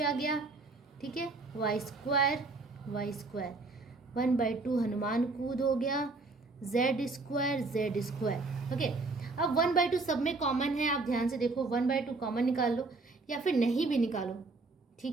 आ गया, ठीक है, y² 1/2 हनुमान कूद हो गया, z², ओके। अब 1/2 सब में कॉमन है, आप ध्यान से देखो, 1/2 कॉमन निकाल लो या फिर नहीं भी निकालो,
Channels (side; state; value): left; quieter; 3.6 dB